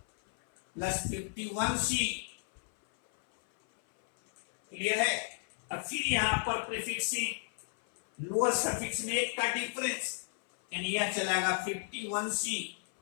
प्लस 51C। क्लियर है। अब फिर यहां पर प्रीफिक्स लोअर सफिक्स में एक का डिफरेंस, यानी यह चलेगा 51C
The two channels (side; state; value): right; silent; 56 dB below the other